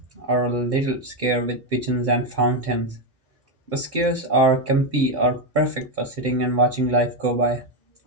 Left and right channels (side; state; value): both; normal; correlation 0.07